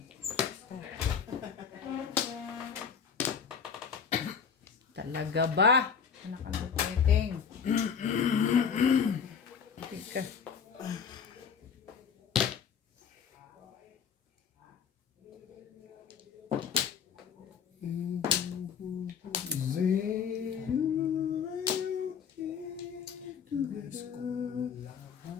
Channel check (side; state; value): right; quieter; 6.9 dB